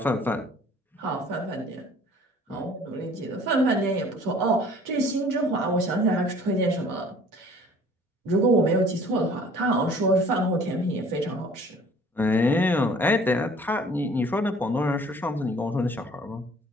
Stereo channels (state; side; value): normal; both; correlation 0.52